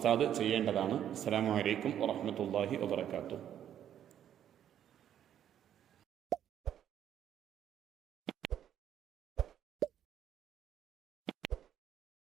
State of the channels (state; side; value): quieter; left; 10.2 dB